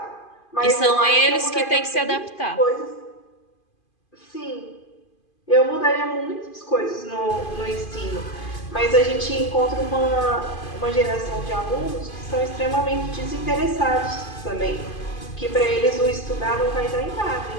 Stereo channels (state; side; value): late; right; 2.5 ms